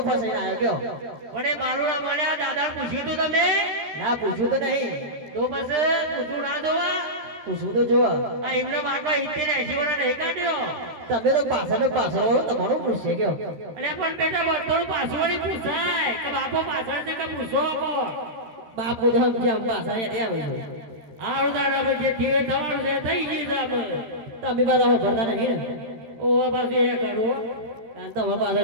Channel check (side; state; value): left; late; 13 ms